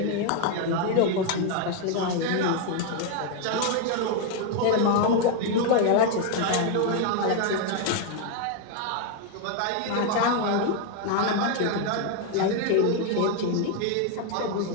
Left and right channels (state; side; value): different; both; correlation 0.01